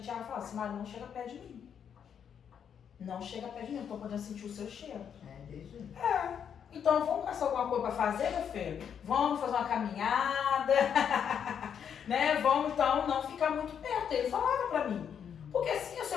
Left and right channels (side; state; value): right; quieter; 8.0 dB